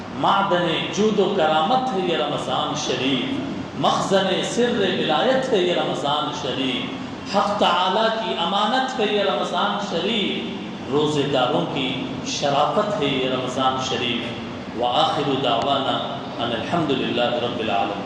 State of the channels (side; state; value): both; identical; correlation 1.00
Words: معدن جود و کرامت ہے یہ رمضان شریف، مخزن سر ولایت ہے یہ رمضان شریف، حق تعالی کی امانت ہے یہ رمضان شریف، روزے داروں کی شرافت ہے یہ رمضان شریف۔ وآخر دعوانا ان الحمد للہ رب